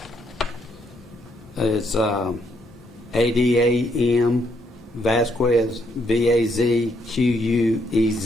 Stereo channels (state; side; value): normal; both; correlation 0.73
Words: it's ADAM Vasquez, VAZQUEZ,